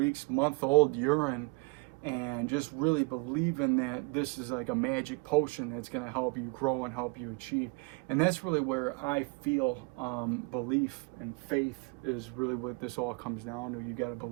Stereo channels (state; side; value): quieter; left; 30.9 dB